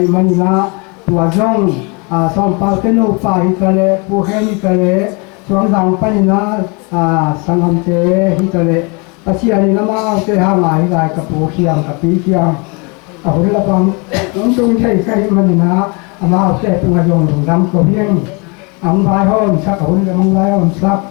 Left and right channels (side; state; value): right; quieter; 31.0 dB